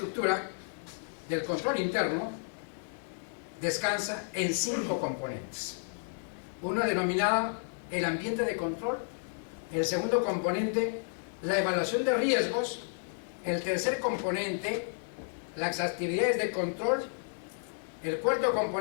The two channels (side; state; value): right; silent; digital silence